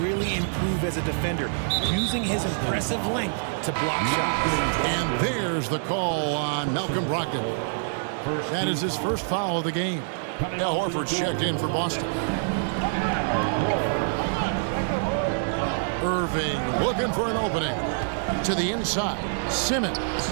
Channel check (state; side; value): silent; left; digital silence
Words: really improve as a defender, using his impressive length to block shots. And there's the call on Malcolm Brogdon. That is his first foul of the game. Al Horford's checked in for Boston. Irving looking for an opening. To the inside, Simmons.